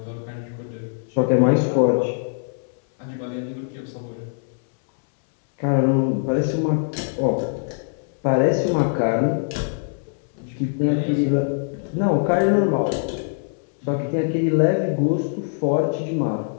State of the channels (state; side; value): silent; right; 63 dB below the other